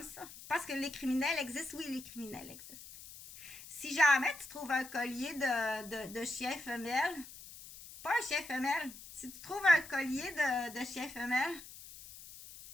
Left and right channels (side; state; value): left; noise; hiss, 16 dB below the sound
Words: ça, parce que les criminels existent, oui, les criminels existent. Si jamais tu trouves un collier de chien femelle, pas un chien femelle, si tu trouves un collier de chien femelle,